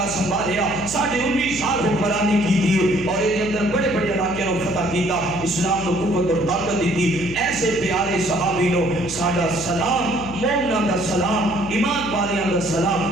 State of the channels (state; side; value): noise; left; hum, 13 dB below the sound